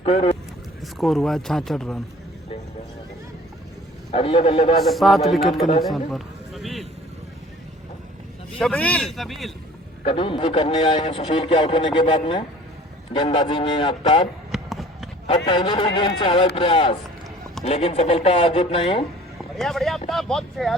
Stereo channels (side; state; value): both; normal; correlation 0.49